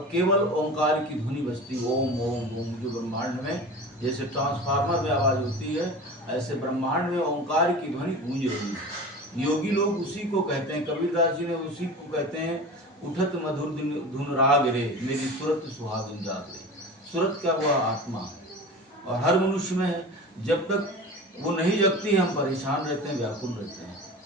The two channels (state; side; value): normal; both; correlation 0.34